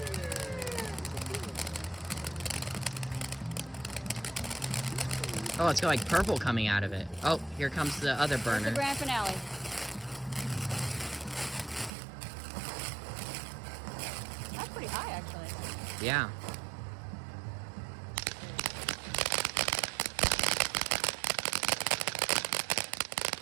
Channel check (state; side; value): drops out; left; at 11.9 s